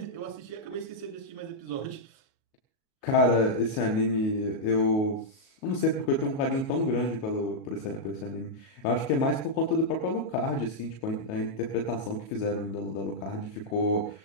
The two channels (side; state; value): right; late; 37 ms